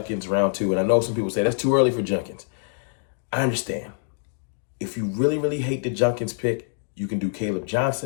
round 2, and I know some people say that's too early for Judkins. I understand. If you really, really hate the Judkins pick, you can do Caleb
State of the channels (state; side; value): silent; right; digital silence